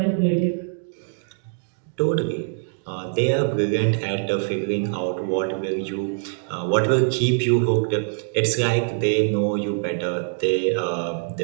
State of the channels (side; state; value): left; silent; digital silence